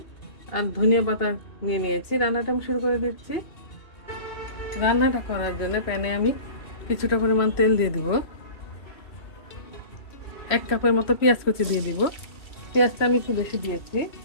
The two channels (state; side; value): late; right; 3.1 ms